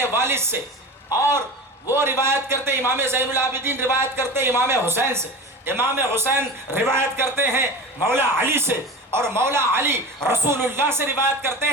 والد سے, اور وہ روایت کرتے امام زین العابدین روایت کرتے امام حسین سے, امام حسین روایت کرتے ہیں مولا علی سے, اور مولا علی رسول اللہ سے روایت کرتے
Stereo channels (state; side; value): normal; both; correlation 0.31